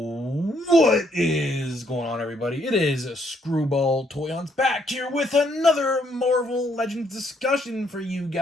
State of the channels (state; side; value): normal; both; correlation 0.70